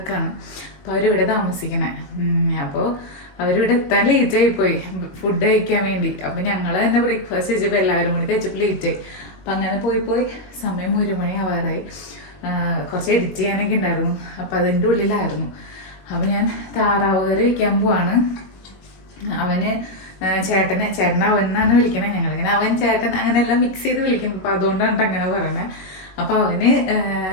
അപ്പോൾ അവരിവിടെ താമസിക്കണേ. അപ്പോൾ അവരിവിടെ എത്താൻ ലേറ്റായി പോയി ഫുഡ് കഴിക്കാൻ വേണ്ടി. അപ്പം ഞങ്ങൾ തന്നെ ബ്രേക്ക്ഫാസ്റ്റ് കഴിച്ചപ്പോൾ എല്ലാവരും കൂടി കഴിച്ചപ്പോൾ ലേറ്റായി. അപ്പം അങ്ങനെ പോയി സമയം 1 മണി ആവാറായി. കുറച്ച് എഡിറ്റ് ചെയ്യാനൊക്കെ ഉണ്ടായിരുന്നു. അപ്പം അതിൻ്റെ ഉള്ളിലായിരുന്നു. അപ്പം ഞാൻ താറാവ് കറി വയ്ക്കാൻ പോവാണ്. അവന് ചേട്ടൻ അവൻ എന്നാണ് വിളിക്കണേ. ഞങ്ങളിങ്ങനെ അവൻ ചേട്ടൻ അങ്ങനെയെല്ലാം മിക്സ് ചെയ്ത് വിളിക്കും. അപ്പം അതുകൊണ്ടാണ് അങ്ങനെ പറയണത്. അപ്പം അവന്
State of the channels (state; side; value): late; right; 21 ms